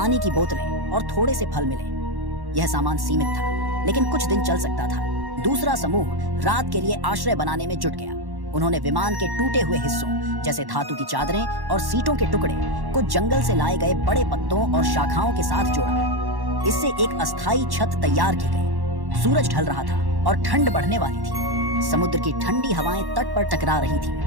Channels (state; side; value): late; left; 1.1 ms